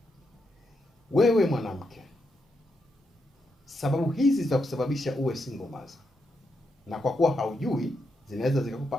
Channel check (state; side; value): normal; both; correlation 0.82